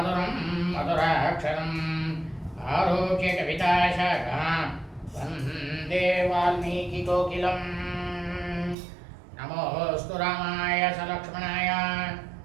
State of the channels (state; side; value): drops out; left; at 8.8 s